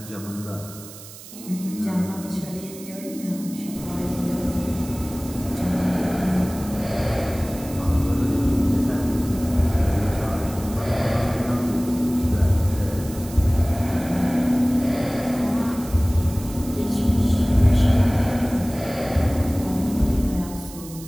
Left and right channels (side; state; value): right; noise; hiss, 16 dB below the sound